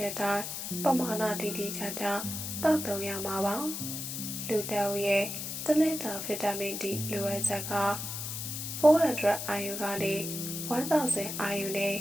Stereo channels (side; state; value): left; noise; hiss, 5 dB below the sound